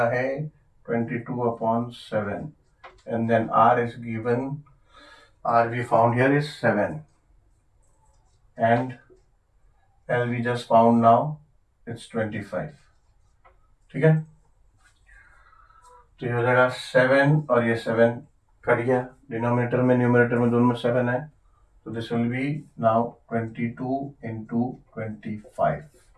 है 22/7, and then r is given, r we found here is 7, and L we just found now it's 25। ठीक है, तो ये हो जाएगा 7 और ये 7 कट गया, डिनोमिनेटर में न्यूमरेटर में दोनों में 7 है, तो this will be now 22 into 25,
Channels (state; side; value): identical; both; correlation 1.00